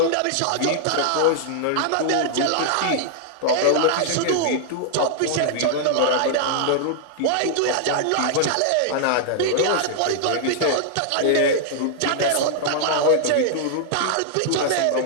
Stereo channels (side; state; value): both; different; correlation -0.01